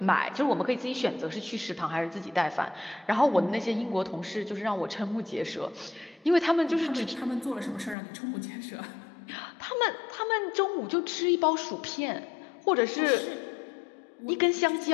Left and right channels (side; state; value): right; drops out; at 8.0 s